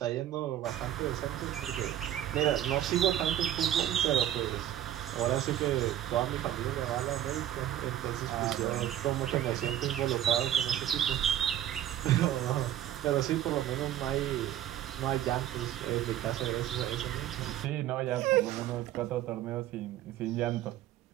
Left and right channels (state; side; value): quieter; left; 12.0 dB